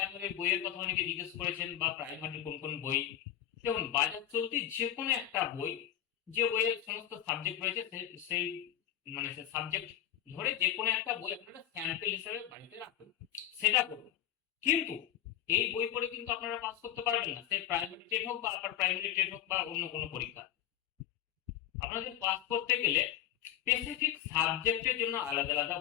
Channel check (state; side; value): quieter; right; 11.4 dB